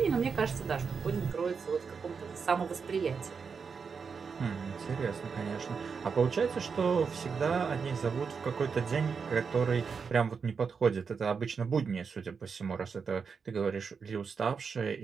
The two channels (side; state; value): left; quieter; 5.7 dB